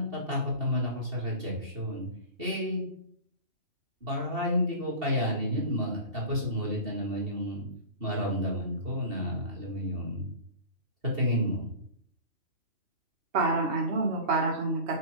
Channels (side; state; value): left; late; 2.7 ms